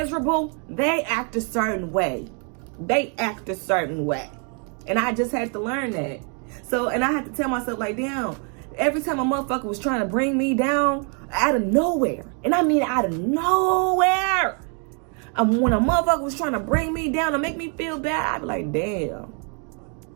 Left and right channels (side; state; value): left; quieter; 38.8 dB